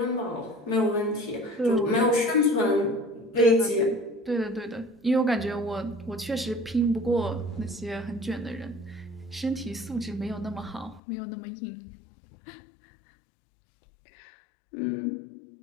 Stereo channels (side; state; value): right; drops out; at 11.0 s